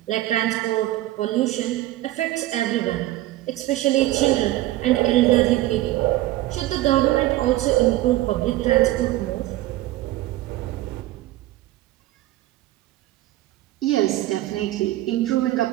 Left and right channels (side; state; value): left; quieter; 16.2 dB